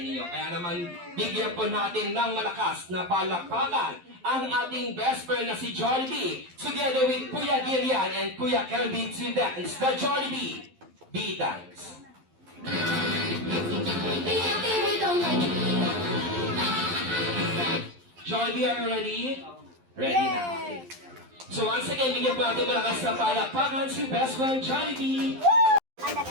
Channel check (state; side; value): late; left; 12 ms